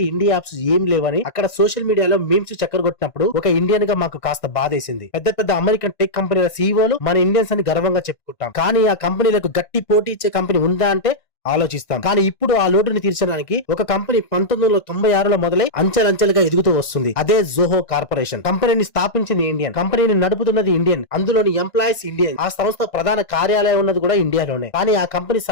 ఇండియా యాప్స్ ఏం లేవని అక్కడ సోషల్ మీడియాలో మీమ్స్ చక్కరగొట్టినప్పుడు ఒక ఇండియన్ గా మాకు కాస్త బాధేసింది. పెద్ద పెద్ద అమెరికన్ టెక్ కంపెనీల సీఈఓలు మన ఇండియన్స్ అని గర్వంగా చెప్పుకుంటాం. కానీ ఆ కంపెనీలకు గట్టి పోటీ ఇచ్చే కంపెనీ ఉందా అంటే ఆలోచిస్తాం. కానీ ఇప్పుడు ఆ లోటుని తీర్చడానికి ఒక కంపెనీ 1996లో మొదలై అంచెలంచెలుగా ఎదుగుతూ వస్తుంది. అదే జోహో కార్పొరేషన్. కంపెనీని స్థాపించింది ఇండియన్, కంపెనీని నడుపుతున్నది ఇండియన్, అందులోని ఎంప్లాయీస్ ఇండియన్. ఆ సంస్థ ప్రధాన కార్యాలయం ఉన్నది కూడా ఇండియాలోనే. కానీ ఆ కంపెనీ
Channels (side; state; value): right; late; 1.5 ms